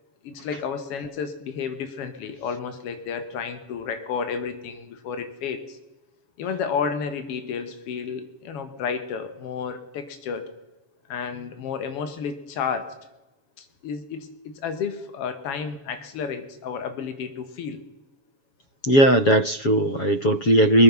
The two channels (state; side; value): late; right; 7.2 ms